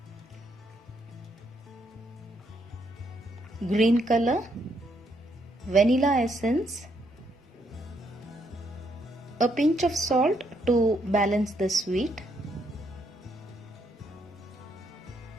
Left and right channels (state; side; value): normal; both; correlation 0.74